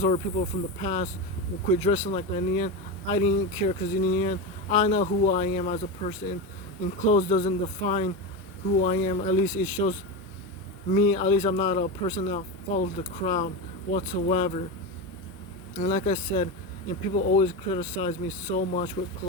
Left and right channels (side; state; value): both; normal; correlation 0.18